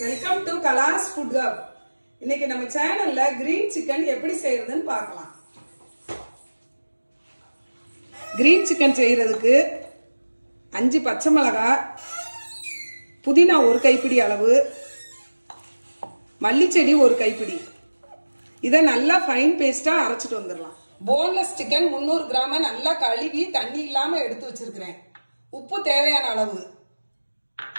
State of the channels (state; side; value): inverted; both; correlation -1.00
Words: welcome to Kala's Food Hub. இன்னைக்கு நம்ம சேனல்ல கிரீன் சிக்கன் எப்படி செய்யறதுன்னு பார்க்கலாம். கிரீன் சிக்கன் செய்யறதுக்கு 5 பச்சை மிளகாய், புதினா 1 கைப்பிடி அளவு, மல்லி செடி 1 கைப்பிடி. இத நல்லா ஃபைன் பேஸ்டா அரைச்சிட்டு வந்துடலாம். போன்லெஸ் சிக்கன் 300 கிராம் நல்லா கழுவி தண்ணி இல்லாம எடுத்து வச்சிருக்கிறேன். உப்பு தேவையான அளவு,